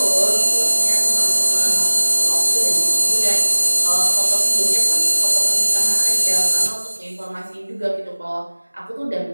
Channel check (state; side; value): inverted; both; correlation -1.00